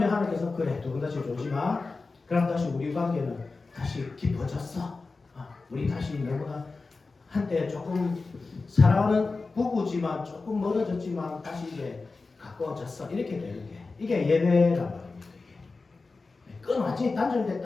하나님께서 그래 두 분 다시 졸지 마. 그럼 다시 우리 관계는 다시 깊어졌어. 우리 다시 너무나 한때 조금 사랑하는 부부지만 조금 멀어졌지만 다시 이제 가까워졌어. 이렇게 되는 게 이게 예배란 말입니다. 이게 완전히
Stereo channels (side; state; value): right; quieter; 3.9 dB